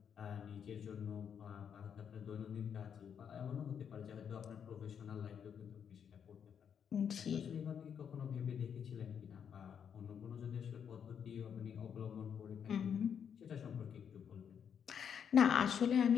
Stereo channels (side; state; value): right; quieter; 7.8 dB